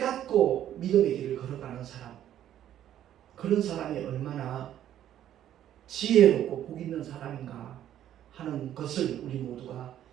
믿음의 길을 걸어가는 사람, 그런 사람이 얼마나 지혜롭고 복 있는 사람인가 하는 것을 우리 모두가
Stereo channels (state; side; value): quieter; left; 11.4 dB